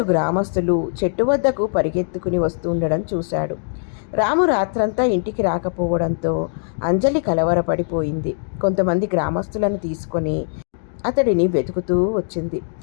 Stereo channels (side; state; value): right; silent; digital silence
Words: గ్రామస్తులు చెట్టు వద్దకు పరిగెత్తుకుని వస్తుండడం చూశాడు. రాము రాత్రంతా ఇంటికి రాకపోవడంతో అంజలి కలవరపడిపోయింది. కొంతమంది గ్రామస్తులను తీసుకొని అతడిని వెతుకుతూ వచ్చింది.